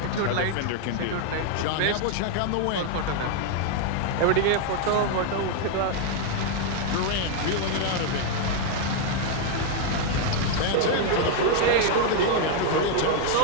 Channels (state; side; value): different; both; correlation 0.00